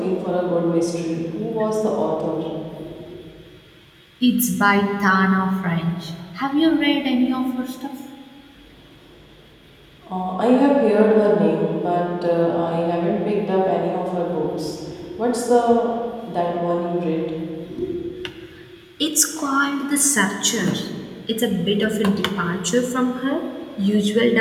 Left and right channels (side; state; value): both; identical; correlation 1.00